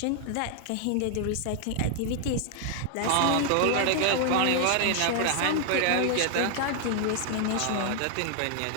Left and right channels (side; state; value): both; different; correlation 0.00